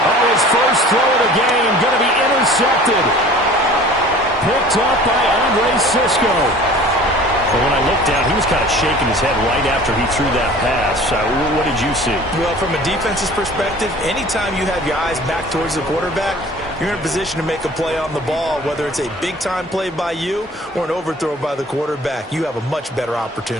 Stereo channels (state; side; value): normal; both; correlation 0.45